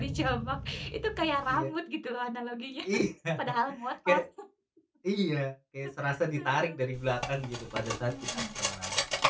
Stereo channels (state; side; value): identical; both; correlation 1.00